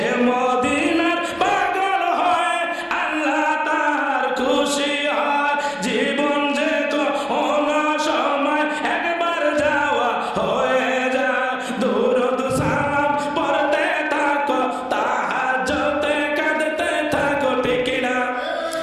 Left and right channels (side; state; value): both; identical; correlation 1.00